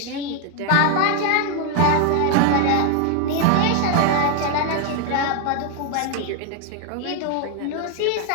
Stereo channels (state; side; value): different; both; correlation 0.01